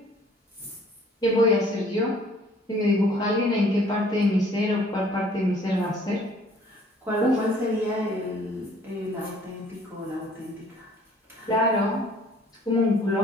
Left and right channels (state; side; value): normal; both; correlation 0.57